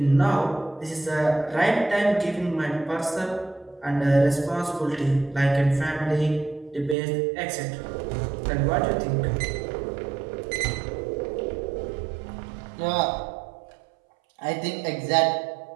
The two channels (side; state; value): left; drops out; at 7.0 s